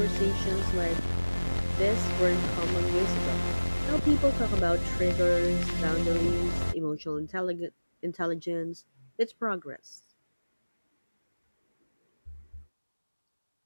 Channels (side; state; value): both; inverted; correlation -1.00